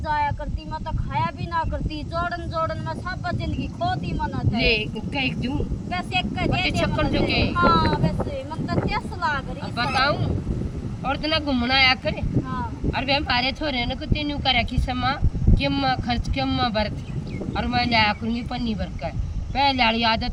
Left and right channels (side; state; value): both; identical; correlation 1.00